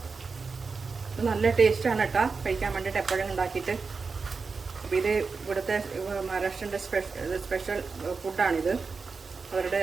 നല്ല ടേസ്റ്റാണ് കേട്ടോ കഴിക്കാൻ വേണ്ടിയിട്ട്, എപ്പോഴും ഉണ്ടാക്കിയിട്ട്. അപ്പോൾ ഇത് ഇവിടുത്തെ മഹാരാഷ്ട്രൻ്റെ സ്പെഷ്യൽ ഫുഡാണിത്.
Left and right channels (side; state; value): left; quieter; 4.7 dB